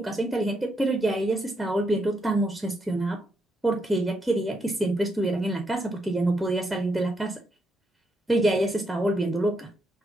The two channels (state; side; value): normal; both; correlation 0.79